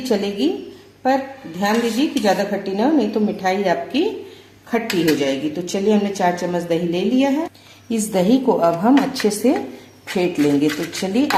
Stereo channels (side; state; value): both; identical; correlation 1.00